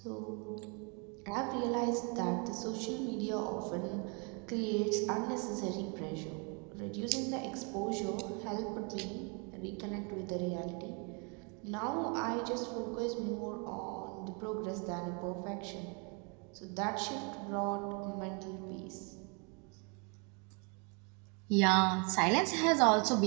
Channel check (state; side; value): quieter; left; 34.3 dB